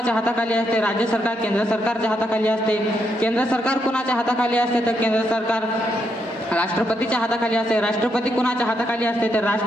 हाताखाली असते? राज्य सरकार केंद्र सरकारच्या हाताखाली असते. केंद्र सरकार कोणाच्या हाताखाली असते? तर केंद्र सरकार राष्ट्रपतीच्या हाताखाली असते. राष्ट्रपती कुणाच्या हाताखाली असते? तर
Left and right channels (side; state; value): both; normal; correlation 0.79